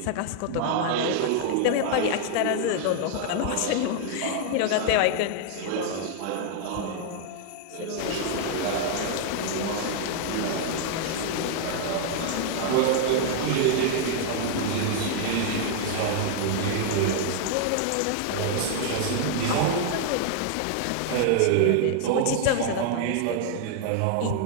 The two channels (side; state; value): both; different; correlation 0.00